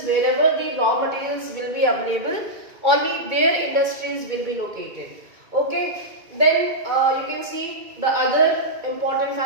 wherever the raw materials will be available, only their industries will be located. Okay, then you can see the other important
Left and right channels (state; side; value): late; left; 2.2 ms